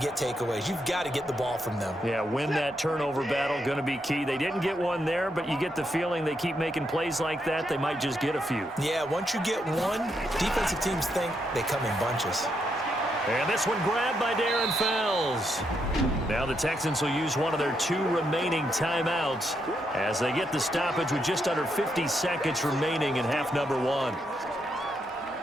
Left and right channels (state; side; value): normal; both; correlation 0.80